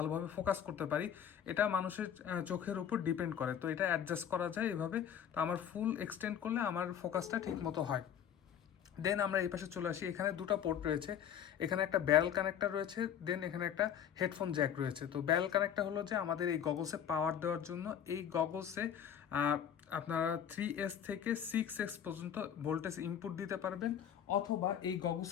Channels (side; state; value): right; quieter; 9.1 dB